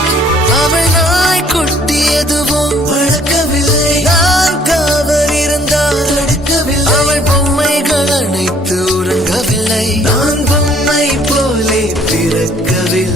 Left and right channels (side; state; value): both; normal; correlation 0.60